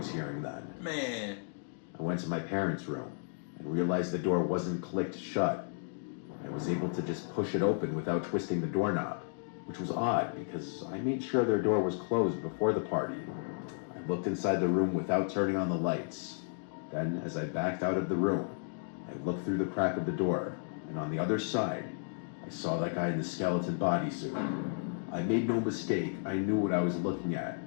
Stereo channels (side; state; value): right; silent; digital silence